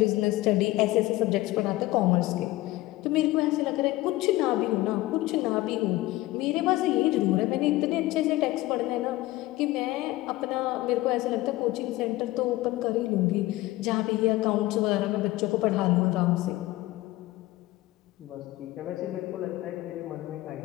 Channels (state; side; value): quieter; right; 18.1 dB